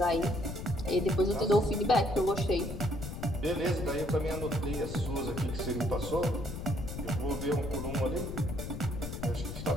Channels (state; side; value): noise; left; rumble, 7 dB below the sound